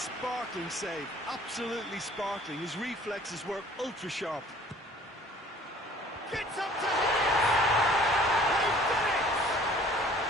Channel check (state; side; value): normal; both; correlation 0.53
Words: save. Absolutely sparkling. His reflexes were ultra sharp. Gets up to hit it! They've done it!